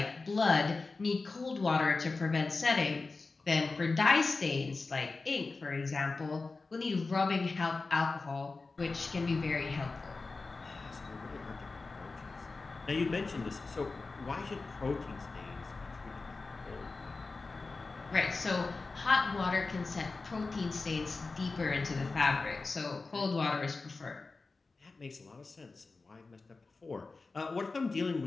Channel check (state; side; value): quieter; right; 3.9 dB